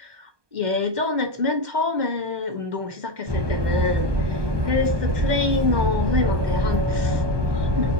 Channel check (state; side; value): late; left; 1.2 ms